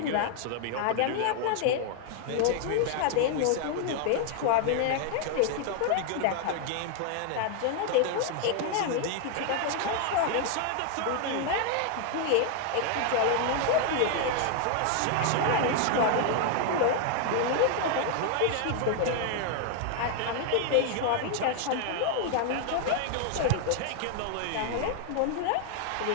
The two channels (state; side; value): different; both; correlation 0.00